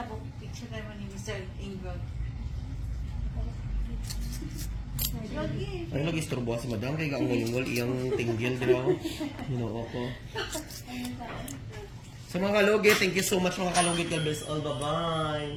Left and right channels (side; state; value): both; identical; correlation 1.00